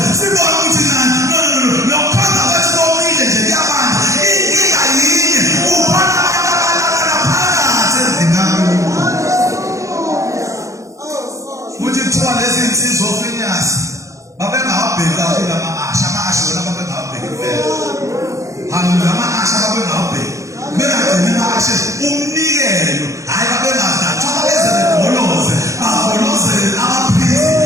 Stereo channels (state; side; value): late; left; 0.15 ms